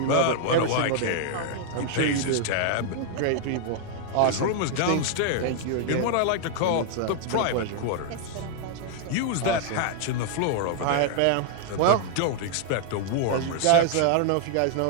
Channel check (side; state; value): both; different; correlation 0.00